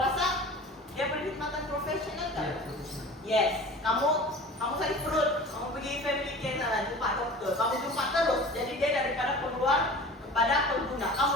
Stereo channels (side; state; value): both; normal; correlation 0.39